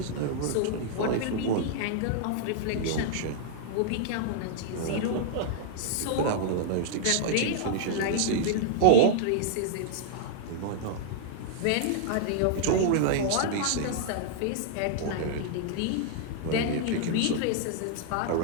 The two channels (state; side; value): different; both; correlation -0.01